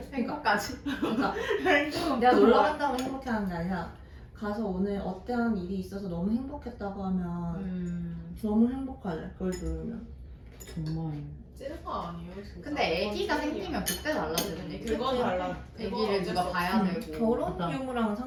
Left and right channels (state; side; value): identical; both; correlation 1.00